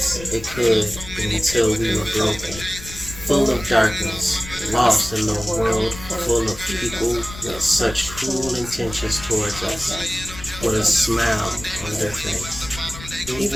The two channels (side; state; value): left; noise; rumble, 14 dB below the sound